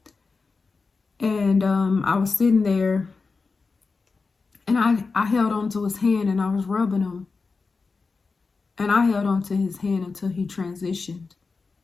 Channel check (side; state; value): right; quieter; 4.3 dB